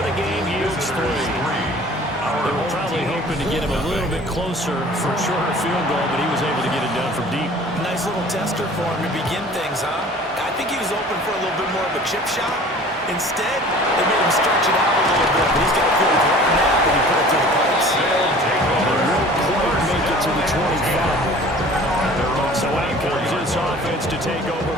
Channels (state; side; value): normal; both; correlation 0.46